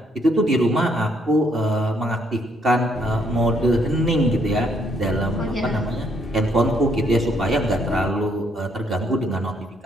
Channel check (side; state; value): both; normal; correlation 0.70